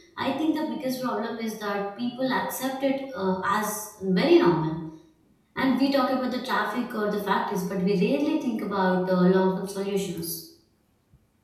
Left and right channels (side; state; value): both; identical; correlation 1.00